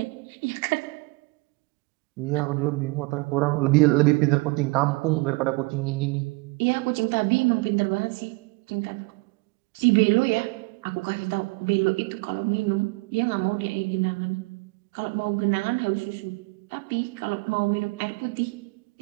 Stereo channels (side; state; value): left; quieter; 26.1 dB